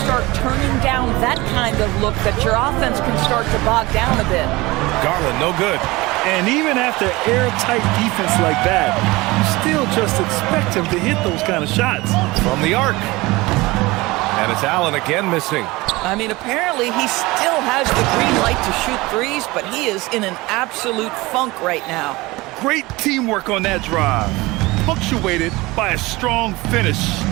start turning down that kind of look that your offense can start to bog down a bit. Garland, no good. And even after airtight defense like that, you still just expect him to hit those kind of shots. From the arc. And it's Allen again missing. I mean, apparently he still has the green light to shoot threes, but he is in an absolute funk right now. Great teamwork on that drive, punctuated by a strong finish.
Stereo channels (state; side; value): quieter; left; 21.5 dB